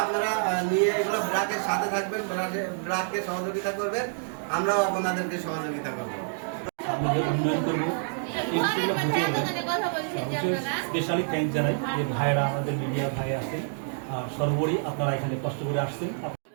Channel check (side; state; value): left; silent; digital silence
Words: আপনারা নিয়ে এগুলো ব্রাকের সাথে থাকবেন, ব্রাককে সহযোগিতা করবেন, আমরাও আপনাদেরকে সহযোগিতা করবো। উন্নয়ন করবো স্পেশালি থ্যাংক জানাই যে ভাইরা আমাদের মিডিয়া ভাই আছেন, আর সর্বোপরি আপনারা এখানে কষ্ট করে আসছেন।